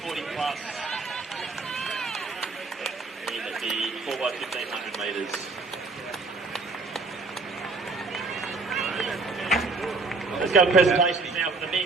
40 plus in the 4x1500 metres. Let's go to presentations now for the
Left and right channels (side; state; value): left; quieter; 3.8 dB